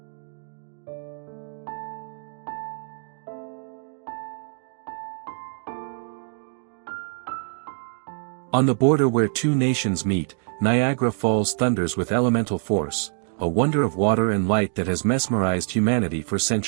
On the border where two nations meet, Niagara Falls thunders with elemental force, a wonder of water and light that has mesmerized humanity for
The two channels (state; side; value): silent; left; 58 dB below the other